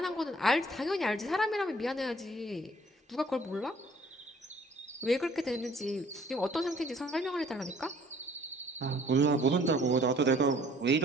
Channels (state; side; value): normal; both; correlation 0.57